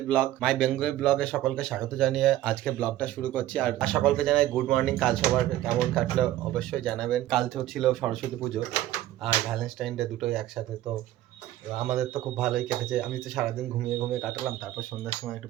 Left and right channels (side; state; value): left; quieter; 14.1 dB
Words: ব্লগে সকলকে স্বাগত জানিয়ে আজকে ব্লগটা শুরু করছি। আর সকলকে জানাই গুড মর্নিং। কাল সবার কেমন কাটলো অবশ্যই জানাবেন। কাল তো ছিল সরস্বতী পুজো আর ভ্যালেন্টাইন ডে, দুটোই একসাথে। তো আমাদের তো খুব ভালোই কেটেছে। আমি তো সারাদিন ঘুমিয়ে কাটালাম। তারপর সন্ধ্যার সময় একটু